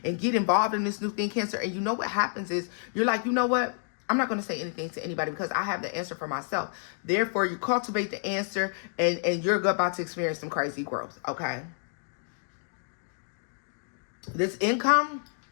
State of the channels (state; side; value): silent; right; 58 dB below the other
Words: and get involved in this new thing, Cancer? And you know what happens is you're like, you know what? I'm not going to say anything to anybody because I have the answer for myself. Therefore, you cultivate the answer, and you're about to experience some crazy growth, okay? This income